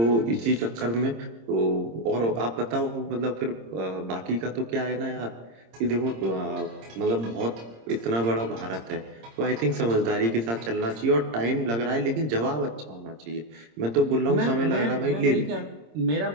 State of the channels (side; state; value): left; late; 26 ms